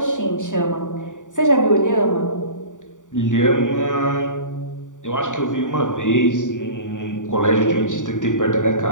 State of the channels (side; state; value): right; late; 0.86 ms